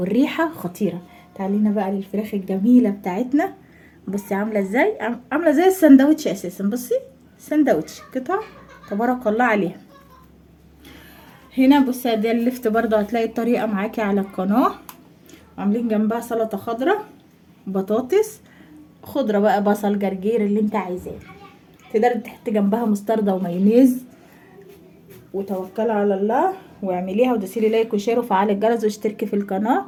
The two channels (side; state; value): both; identical; correlation 1.00